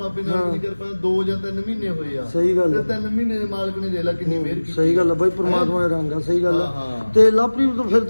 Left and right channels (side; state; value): both; inverted; correlation -1.00